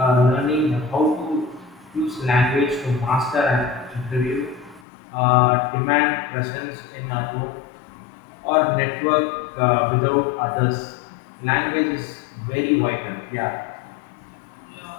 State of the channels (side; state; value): right; drops out; at 4.8 s